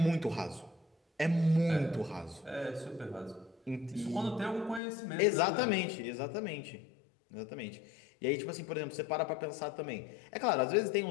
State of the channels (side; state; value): right; drops out; at 4.8 s